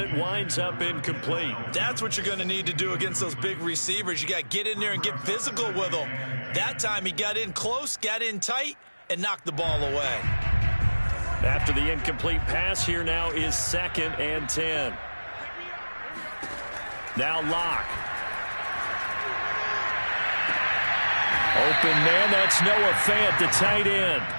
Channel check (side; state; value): both; inverted; correlation -1.00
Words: it winds up incomplete. That's what you're going to need to do against those big receivers. You got to get in there and get physical with them. That time he got in close, got in tight, and knocked the ball away. After the incomplete pass, here now is 2nd and 10. Now Locke. Open man, that's Noah Fant, the tight end.